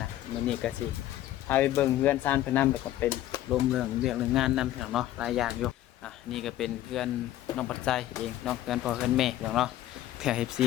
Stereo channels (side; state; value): right; quieter; 13.7 dB